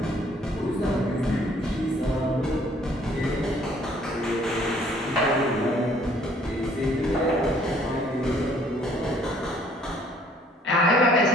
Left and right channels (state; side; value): normal; both; correlation 0.60